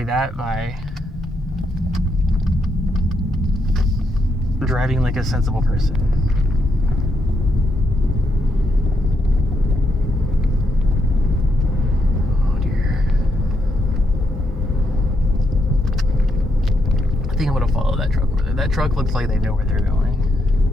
that by driving like a sensible person. Oh dear. I think I'm gonna follow that truck over there. That truck looks like they know where they're going.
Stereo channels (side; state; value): both; normal; correlation 0.79